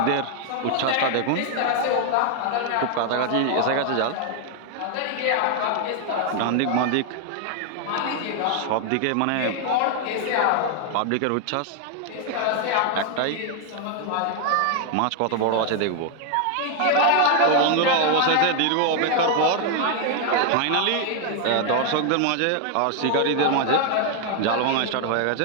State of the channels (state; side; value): different; both; correlation 0.00